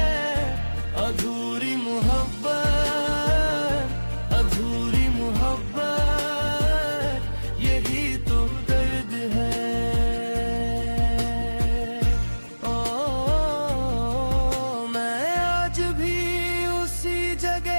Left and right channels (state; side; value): inverted; both; correlation -1.00